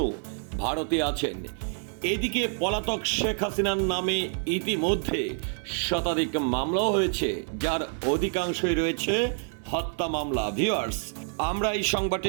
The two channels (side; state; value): left; silent; 55 dB below the other